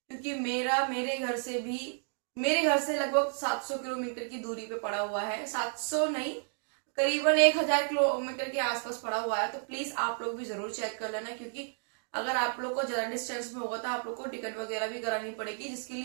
क्योंकि मेरे घर से लगभग 700 किलोमीटर की दूरी पे पड़ा हुआ है। 700 नहीं, करीबन 1000 किलोमीटर के आसपास पड़ा हुआ है। तो प्लीज आप लोग भी जरूर चेक कर लेना, क्योंकि अगर आप लोग को ज्यादा डिस्टेंस में होगा तो आप लोग को टिकट वगैरह भी करानी पड़ेगी, जिसके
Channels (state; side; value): silent; left; 56 dB below the other